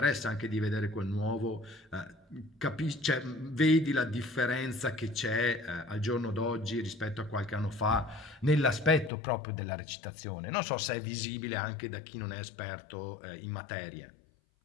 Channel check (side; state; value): right; drops out; at 9.1 s